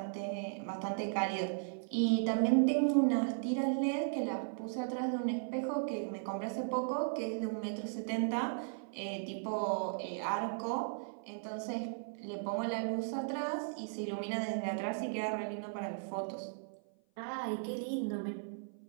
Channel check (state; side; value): silent; left; 53 dB below the other